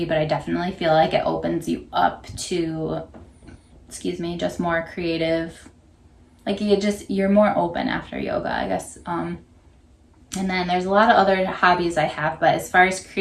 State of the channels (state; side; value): identical; both; correlation 1.00